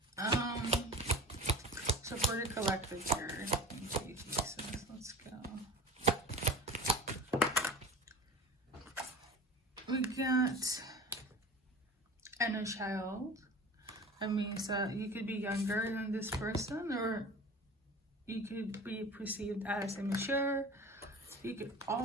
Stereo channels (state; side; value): normal; both; correlation 0.36